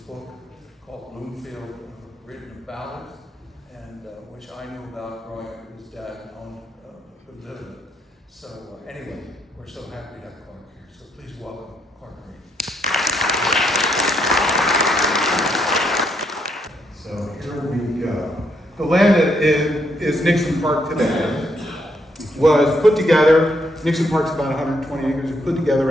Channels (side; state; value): both; normal; correlation 0.75